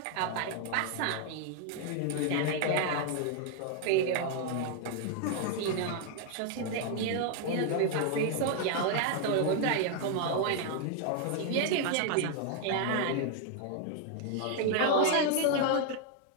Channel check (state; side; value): different; both; correlation 0.00